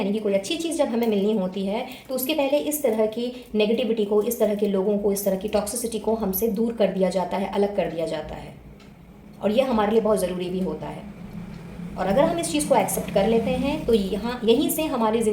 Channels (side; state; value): both; identical; correlation 1.00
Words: कि कोई अच्छी चीज़ जब हमें मिलनी होती है, तो उसके पहले इस तरह की नेगेटिविटी को, इस तरह के लोगों को, इस तरह की टॉक्सिसिटी को हमसे दूर कर दिया जाता है, अलग कर दिया जाता है, और ये हमारे लिए बहुत ज़रूरी भी होता है। और अगर हम इस चीज़ को एक्सेप्ट कर लेते हैं तो यहीं से हमारी